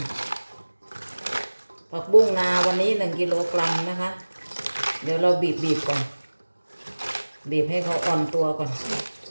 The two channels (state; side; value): inverted; both; correlation -1.00